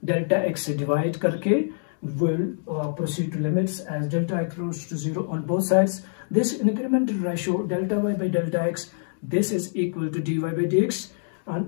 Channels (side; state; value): right; silent; digital silence